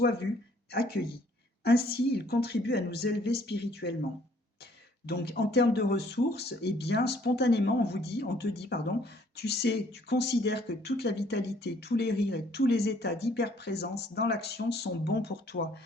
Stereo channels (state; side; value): normal; both; correlation 0.62